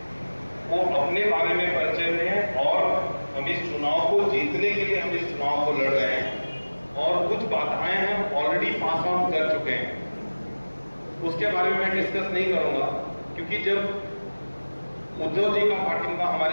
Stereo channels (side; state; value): both; inverted; correlation -1.00